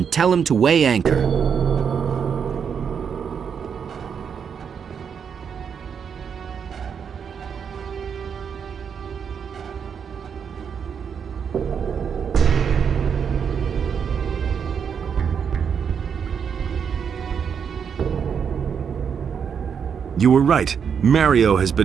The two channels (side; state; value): left; quieter; 7.1 dB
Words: tell him to weigh anchor. You were right. Mario has